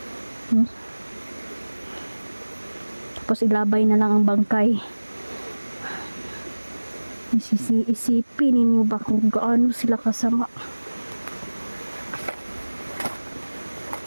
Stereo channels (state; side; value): inverted; both; correlation -1.00